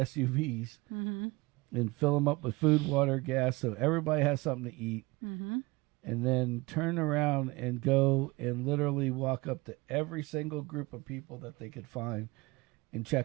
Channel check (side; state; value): left; quieter; 23.5 dB